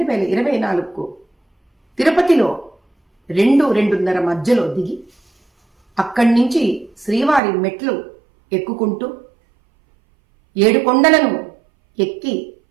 తిరుపతిలో 2-2:30 మధ్యలో దిగి అక్కడి నుంచి శ్రీవారి మెట్లు ఎక్కుకుంటూ 7 కొండలను ఎక్కి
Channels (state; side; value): drops out; left; at 7.4 s